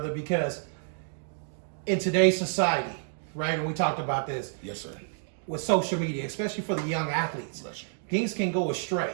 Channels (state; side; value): silent; left; digital silence